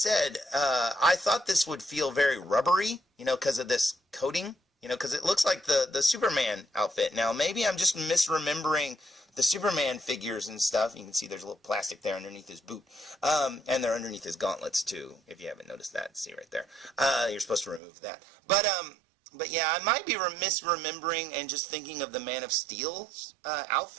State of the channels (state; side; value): drops out; left; at 17.8 s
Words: I thought this would feel very rubbery, because of this coating You know, because it looks like the Superman outfit. Now, maybe I'm just misremembering the Superman figures and stuff. You can see there's a little plastic there underneath his boot. And they're underneath his gauntlets, too, if you haven't noticed that. See right there. You're supposed to remove that. But yeah, I might be misremembering and just thinking of the Man of Steel's